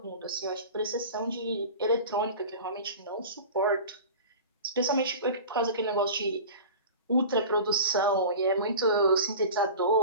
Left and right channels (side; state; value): both; inverted; correlation -0.34